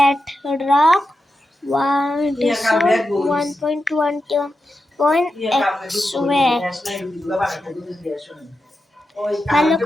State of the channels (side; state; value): both; normal; correlation 0.89